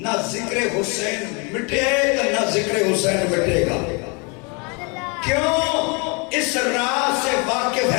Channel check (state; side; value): quieter; right; 32.1 dB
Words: ذکر حسین مٹے تو نہ ذکر حسین مٹے گا کیوں اس راز سے واقف